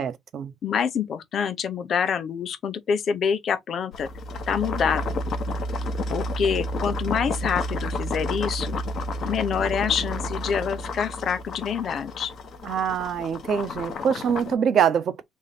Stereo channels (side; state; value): both; normal; correlation 0.66